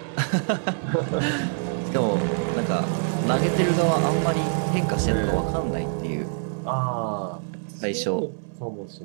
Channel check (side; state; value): left; silent; 61 dB below the other